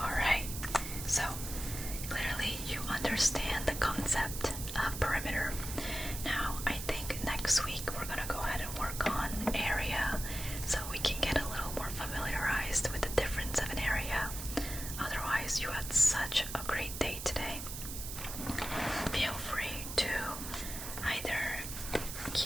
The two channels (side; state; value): right; noise; hiss, 7 dB below the sound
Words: So, clearly you understand the concept of perimeter. Now, I think next week we're going to go ahead and work on area so we can get a little more familiarized with the difference of an area. Otherwise, you had such a great day today. Feel free to either